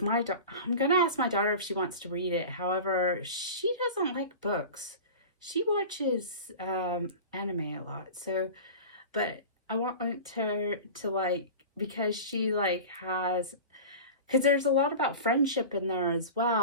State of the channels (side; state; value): both; inverted; correlation -0.33